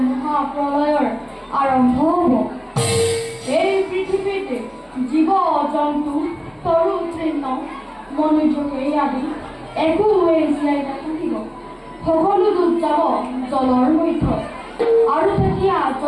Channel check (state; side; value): identical; both; correlation 1.00